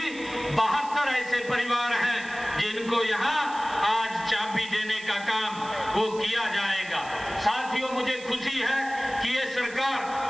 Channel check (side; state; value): right; noise; hiss, 18 dB below the sound